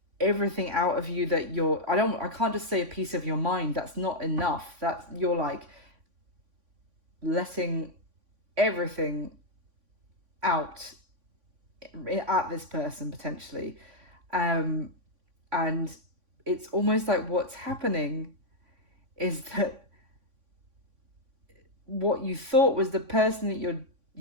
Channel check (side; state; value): left; late; 3.5 ms